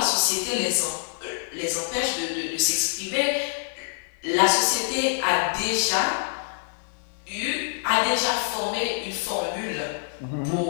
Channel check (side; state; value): right; silent; digital silence